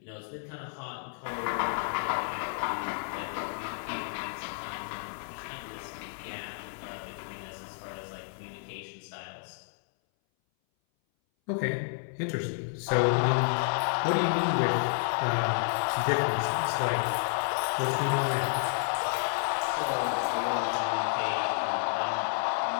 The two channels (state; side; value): silent; right; 57 dB below the other